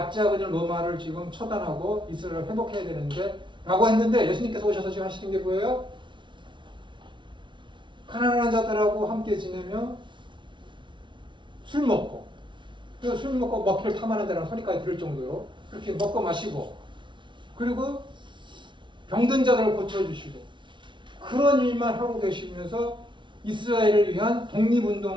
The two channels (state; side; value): late; left; 0.24 ms